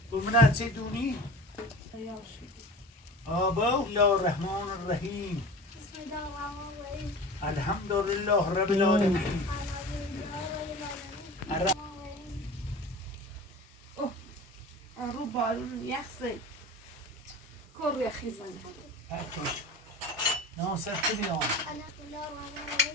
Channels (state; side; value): normal; both; correlation 0.36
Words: بگو چی دونی آبا الله الرحمن الرحیم الحمد لله رب العالمین رو بارون یخصی کر یخی زنه ناصر کنیم